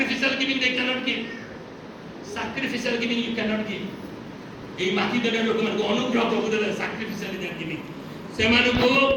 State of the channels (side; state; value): both; identical; correlation 1.00